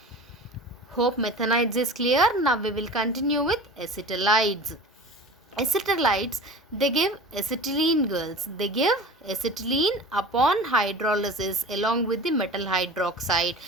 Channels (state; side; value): normal; both; correlation 0.37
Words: Hope methanides is clear. Now we will continue with acetylides. Acetylides, they give acetylene, girls. They give acetylene upon hydrolysis along with the metal hydroxide,